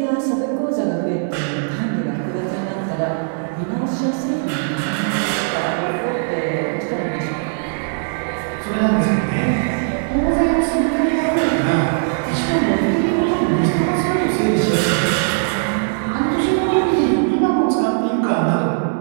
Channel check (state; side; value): silent; left; digital silence